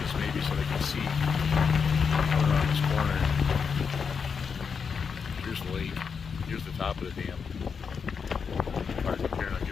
maybe so they can see around this corner. Here's the lake. Here's the top of the dam. Right up here, and I'll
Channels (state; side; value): quieter; right; 6.0 dB